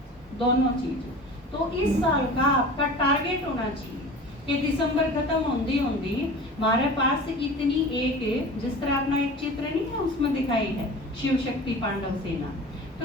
दोनों चीजें। तो इस साल का आपका टारगेट होना चाहिए कि दिसंबर खत्म होंदी होंदी हमारे पास इतनी एक, जिस तरह अपना एक चित्र नहीं है उसमें दिखाई है शिव शक्ति पांडव सेना,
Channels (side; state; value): both; normal; correlation 0.38